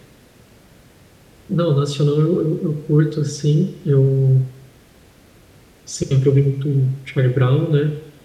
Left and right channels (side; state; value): both; identical; correlation 1.00